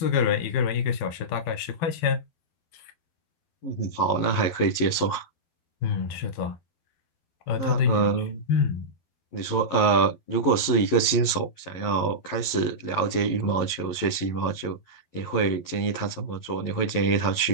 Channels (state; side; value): late; right; 11 ms